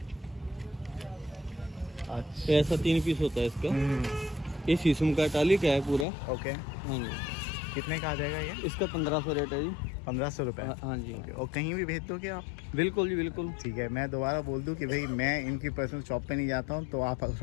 अच्छा। ऐसा 3 पीस होता है इसका। हम्म, ये शीशम का टाली का है पूरा। ओके। हाँ जी। कितने का आ जाएगा ये? इसका 1500 रेट है जी। 1500 रुपये? हाँ जी। ओके। और कहीं भी भेज दोगे आप? बिल्कुल जी, बिल्कुल। ठीक है। मैं दोबारा बोल दूं कि भाई मैं इनकी पर्सनल शॉप पे नहीं जाता हूं, तो आप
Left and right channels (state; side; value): drops out; right; at 6.1 s